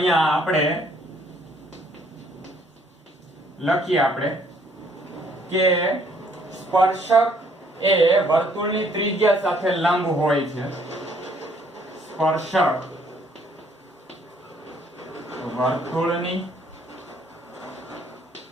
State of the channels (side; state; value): both; normal; correlation 0.64